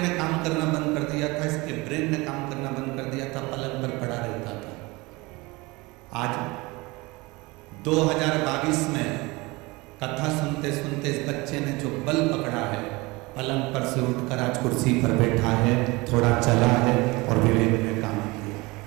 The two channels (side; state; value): left; quieter; 23.6 dB